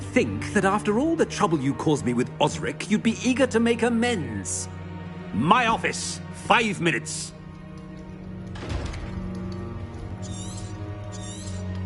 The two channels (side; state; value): both; identical; correlation 1.00